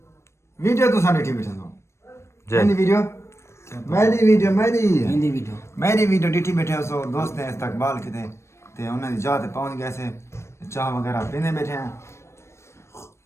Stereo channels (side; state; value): right; late; 0.13 ms